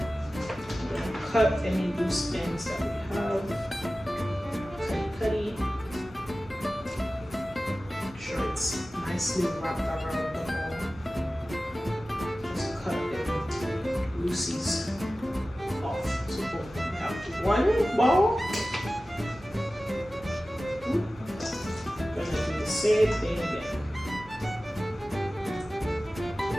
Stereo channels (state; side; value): normal; both; correlation 0.96